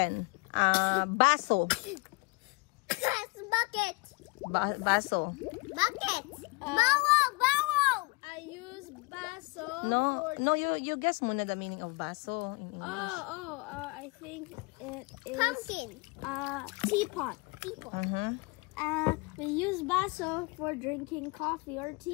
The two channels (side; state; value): right; quieter; 25.9 dB